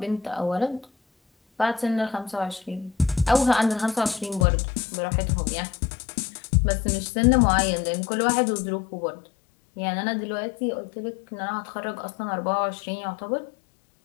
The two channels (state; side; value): drops out; right; at 4.5 s